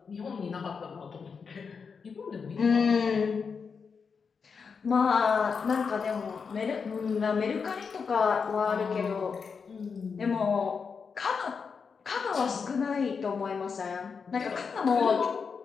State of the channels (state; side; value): quieter; right; 5.6 dB